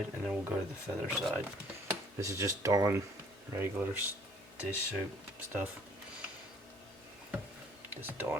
and then we'll go to the feather side. This is just Dawn regular dish soap stuff. This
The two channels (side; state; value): both; normal; correlation 0.57